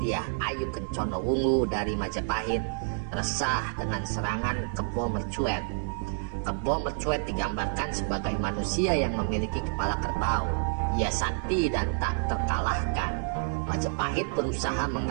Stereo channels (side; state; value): left; silent; 59 dB below the other